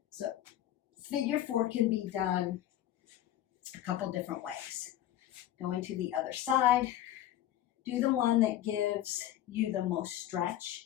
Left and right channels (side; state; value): right; quieter; 12.7 dB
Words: So figure 4 can be done a couple different ways. Going to the other side, do the one that gives you the most stretch